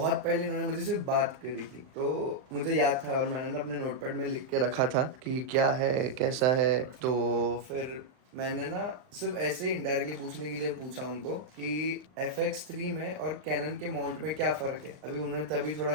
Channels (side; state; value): left; late; 39 ms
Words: पहले इन्होंने मुझे सिर्फ बात करी थी, तो मुझे याद था और मैंने ना अपने नोटपैड में लिख के रखा था कि क्या है कैसा है। तो फिर मैंने ना सिर्फ ऐसे ही इनडायरेक्टली पूछने के लिए पूछा उनको कि FX3 में और कैनन के माउंट में क्या फ़र्क है। अभी उन्हें तभी थोड़ा